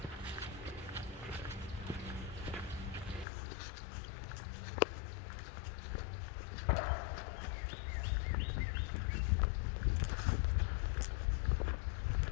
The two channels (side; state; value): right; drops out; at 3.2 s